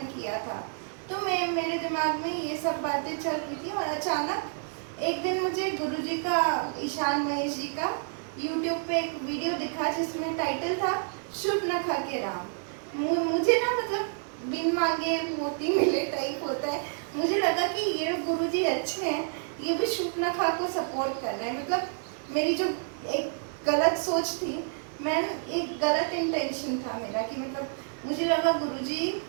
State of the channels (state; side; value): silent; left; 59 dB below the other